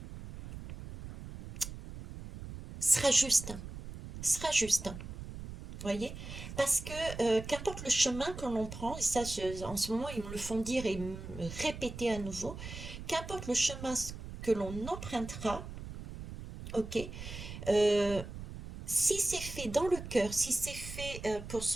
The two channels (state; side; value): noise; right; rumble, 10 dB below the sound